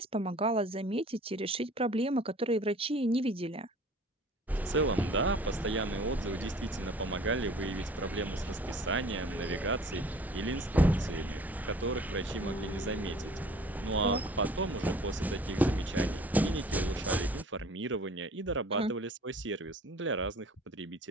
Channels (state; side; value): normal; both; correlation 0.49